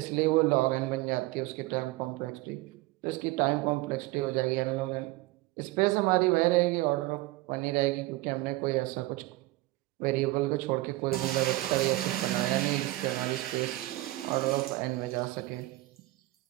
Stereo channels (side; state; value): left; quieter; 19.0 dB